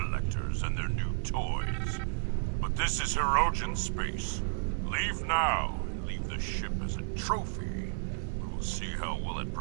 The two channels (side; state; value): left; silent; 56 dB below the other